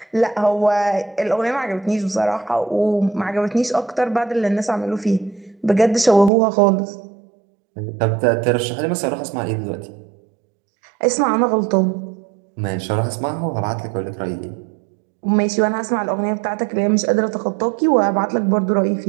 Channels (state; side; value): drops out; left; at 6.3 s